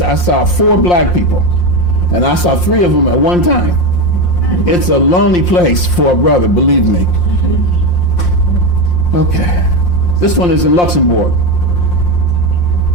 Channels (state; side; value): late; right; 5.7 ms